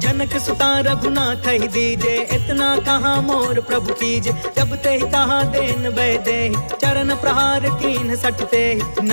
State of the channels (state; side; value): inverted; both; correlation -1.00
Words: जनक सुता रघुनाथ ही दीजे, इतना कहाँ मोर प्रभु कीजे, जब ते कहा देन वैदे, चरण प्रहार कीन सटते,